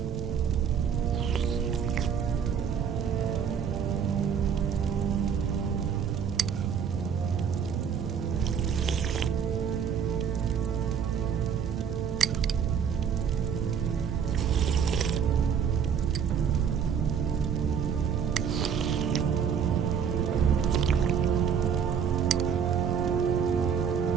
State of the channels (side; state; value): left; quieter; 7.4 dB